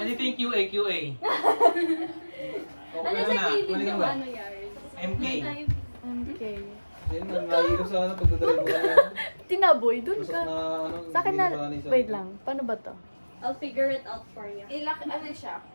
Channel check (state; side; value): inverted; both; correlation -1.00